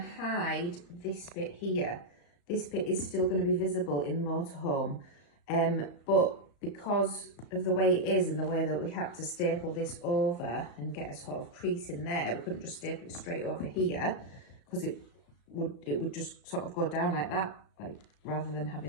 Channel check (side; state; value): right; late; 35 ms